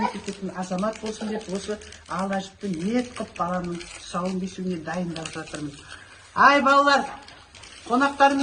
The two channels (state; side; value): identical; both; correlation 1.00